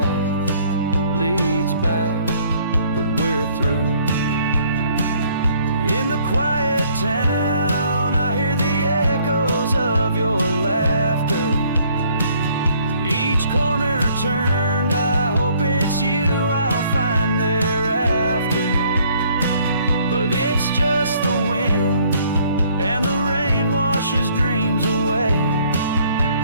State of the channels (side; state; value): both; inverted; correlation -0.62